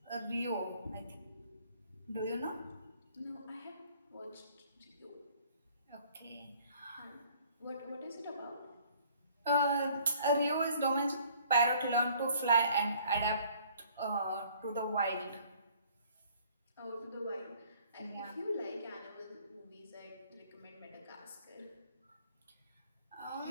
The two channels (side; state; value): both; inverted; correlation -0.57